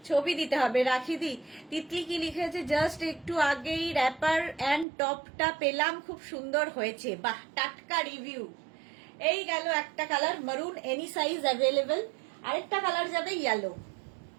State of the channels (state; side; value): drops out; left; at 4.9 s